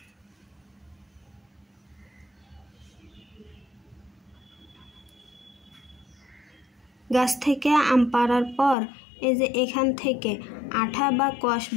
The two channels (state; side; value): drops out; right; at 8.8 s